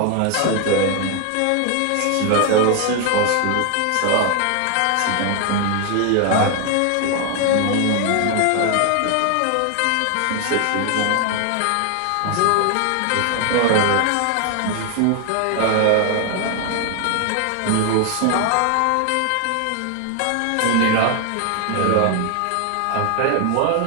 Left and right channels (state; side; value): different; both; correlation 0.00